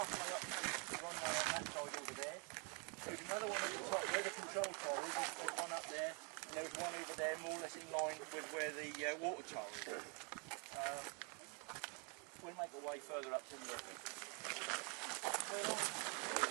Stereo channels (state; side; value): quieter; left; 35.3 dB